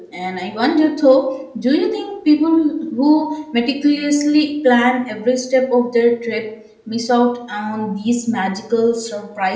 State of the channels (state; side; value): identical; both; correlation 1.00